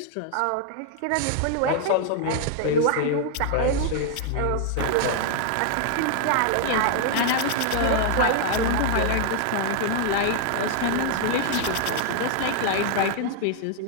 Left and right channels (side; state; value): both; different; correlation 0.00